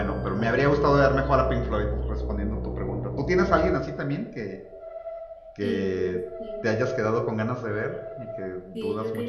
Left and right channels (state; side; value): identical; both; correlation 1.00